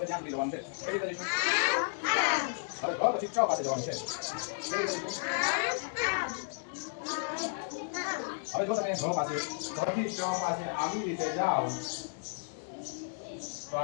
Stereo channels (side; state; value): right; silent; digital silence